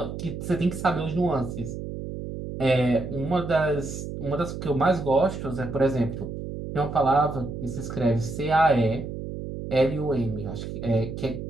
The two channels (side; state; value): right; noise; hum, 7 dB below the sound